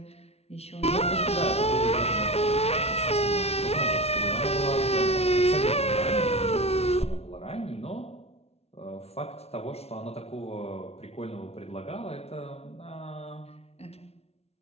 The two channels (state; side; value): late; right; 0.30 ms